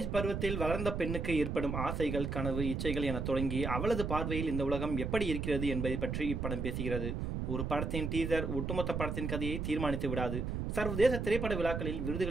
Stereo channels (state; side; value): noise; right; rumble, 2 dB below the sound